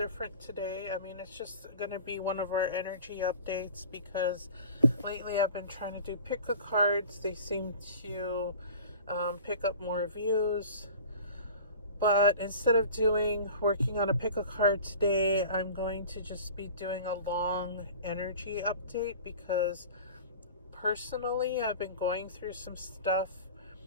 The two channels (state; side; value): inverted; both; correlation -0.40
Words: today. It's just going to be one of our energy updates because lately I've been trying to do pick-a cards. They seem to pick up more views. But instead of working on a pick-a card today, I'm going to just be doing a long energy update because personally I've been going through some stuff.